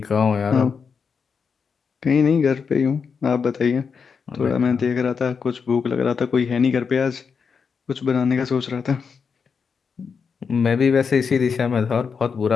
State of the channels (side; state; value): right; quieter; 5.9 dB